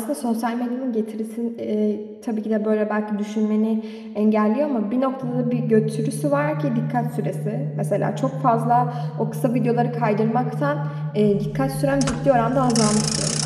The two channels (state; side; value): identical; both; correlation 1.00